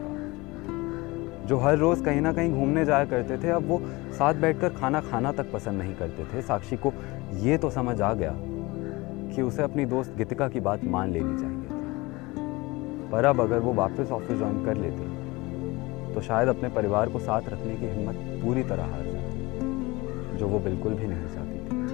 जो हर रोज कहीं ना कहीं घूमने जाया करते थे, अब वो साथ बैठकर खाना खाना तक पसंद नहीं करते थे। साक्षी को ये तो समझ आ गया कि उसे अपनी दोस्त गीतिका की बात मान लेनी चाहिए थी, पर अब अगर वो वापस ऑफिस ज्वाइन कर लेती तो शायद अपने परिवार को साथ रखने की हिम्मत पूरी तरह हार जाती, जो वो बिल्कुल भी नहीं चाहती थी।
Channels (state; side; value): quieter; right; 22.9 dB